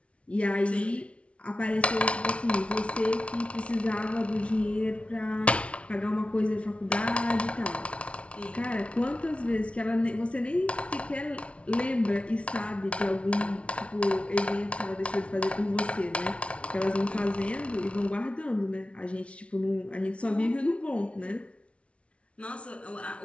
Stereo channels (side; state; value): right; late; 0.061 ms